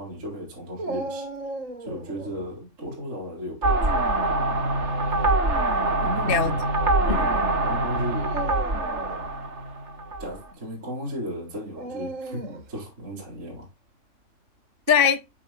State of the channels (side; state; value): left; late; 2.7 ms